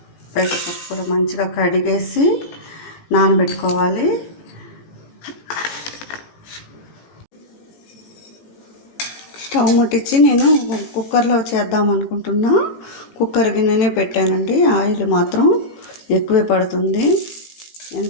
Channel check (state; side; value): late; right; 18 ms